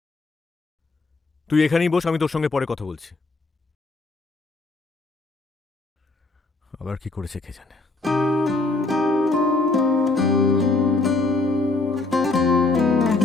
তুই এখানেই বস, আমি তোর সঙ্গে পরে কথা বলছি। আবার কি করেছে কে জানে।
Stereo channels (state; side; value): quieter; right; 3.4 dB